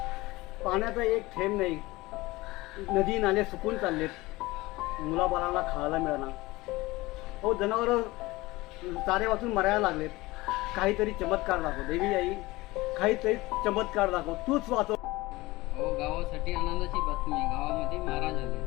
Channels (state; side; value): quieter; right; 20.3 dB